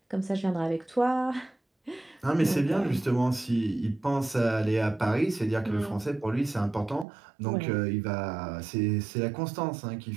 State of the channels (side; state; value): left; drops out; at 7.1 s